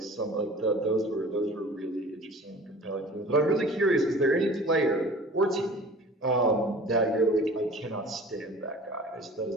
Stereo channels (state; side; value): normal; both; correlation 0.43